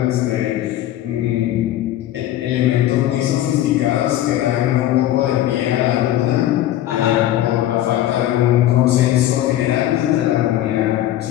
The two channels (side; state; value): right; quieter; 13.3 dB